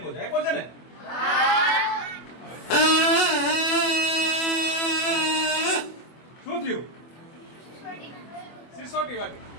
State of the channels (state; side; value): late; right; 24 ms